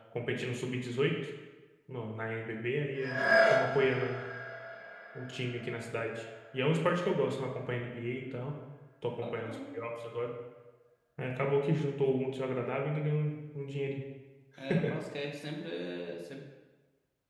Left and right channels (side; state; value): both; identical; correlation 1.00